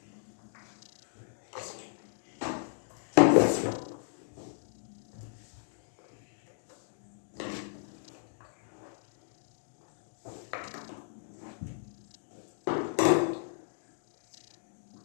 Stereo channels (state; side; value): silent; right; digital silence